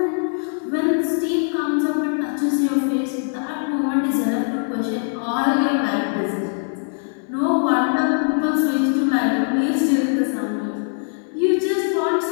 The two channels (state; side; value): silent; right; digital silence